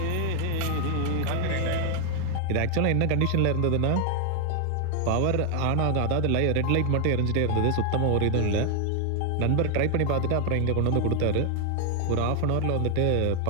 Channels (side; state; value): both; different; correlation 0.00